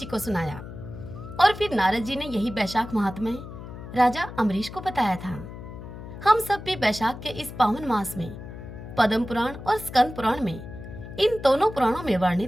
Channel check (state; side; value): noise; left; hum, 12 dB below the sound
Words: को सुनाया, और फिर नारद जी ने यही वैशाख महात्म्य राजा अम्बरीश को बताया था। हम सब भी वैशाख के इस पावन मास में पद्म पुराण और स्कंद पुराण में, इन दोनों पुराणों में